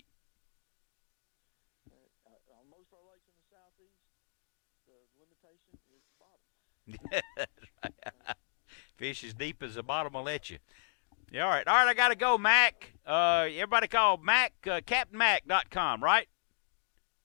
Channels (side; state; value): right; silent; digital silence